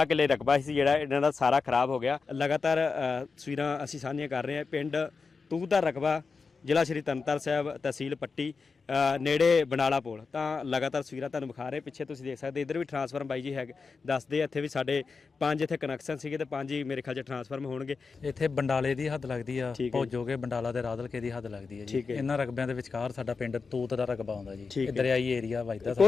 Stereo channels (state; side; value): quieter; right; 4.7 dB